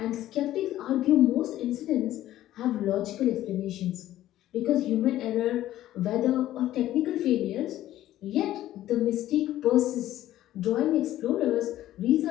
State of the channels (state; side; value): quieter; right; 13.7 dB